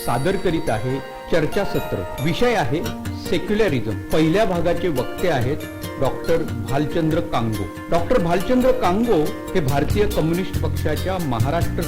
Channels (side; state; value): both; identical; correlation 1.00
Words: सादर करीत आहे चर्चासत्र. विषय आहे सेक्युलरिझम. पहिल्या भागाचे वक्ते आहेत doctor Bhalchandra Congo. Doctor Bhalchandra Congo हे भारतीय कम्युनिस्ट पक्षाच्या महाराष्ट्र